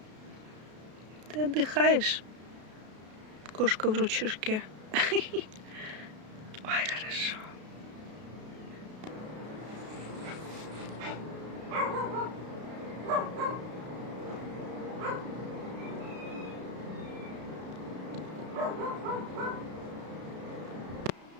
Ты отдыхаешь? Кошка в ручушке. Ой, хорошо.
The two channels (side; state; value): left; late; 33 ms